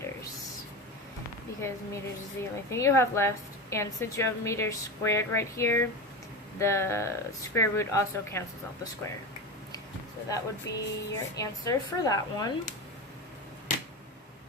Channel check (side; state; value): both; normal; correlation 0.22